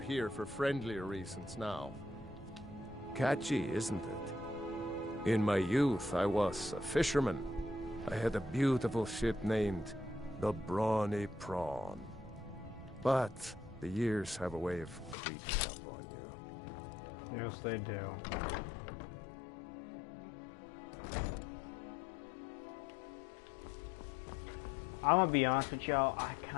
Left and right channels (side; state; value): right; drops out; at 15.2 s